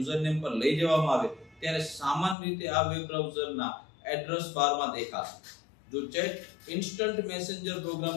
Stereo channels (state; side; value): drops out; right; at 2.4 s